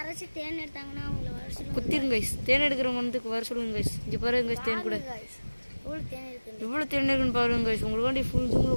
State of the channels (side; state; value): both; inverted; correlation -1.00